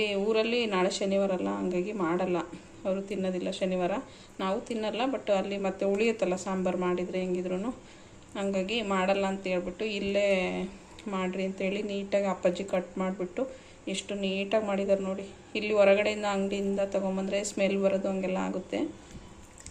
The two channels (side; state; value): both; identical; correlation 1.00